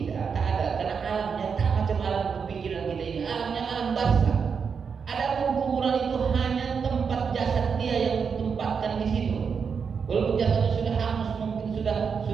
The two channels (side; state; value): left; quieter; 6.1 dB